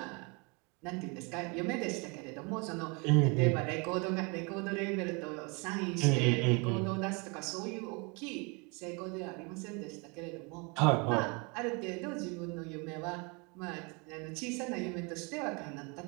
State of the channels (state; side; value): quieter; left; 30.8 dB